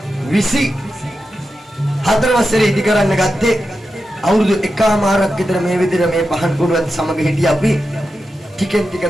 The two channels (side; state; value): both; normal; correlation 0.90